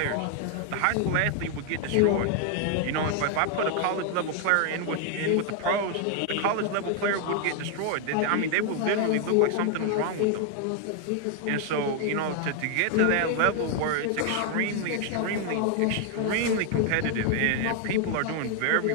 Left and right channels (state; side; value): different; both; correlation 0.00